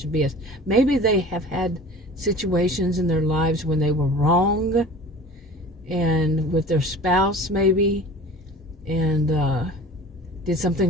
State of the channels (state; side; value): normal; both; correlation 0.41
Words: of BS. Maybe they have had situations in their lives when they were wrong, and with their spouse maybe, and did